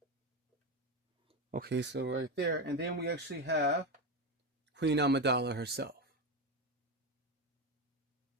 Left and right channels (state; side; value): normal; both; correlation 0.14